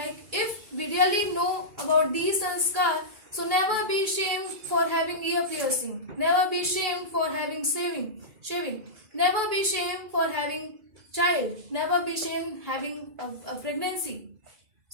if we really know about these sanskar, so never be ashamed for having ear piercing. Never be ashamed for having shaving. Never be ashamed for having child. Never be ashamed having a pregnancy.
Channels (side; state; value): left; late; 2.3 ms